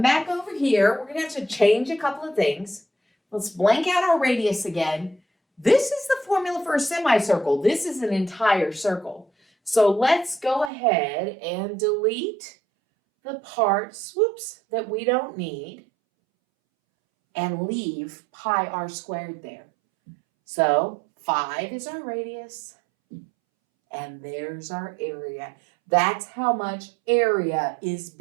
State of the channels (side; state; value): left; drops out; at 10.7 s